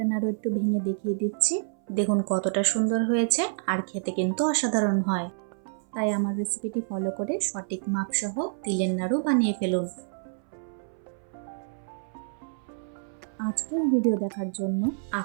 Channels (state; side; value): silent; left; 59 dB below the other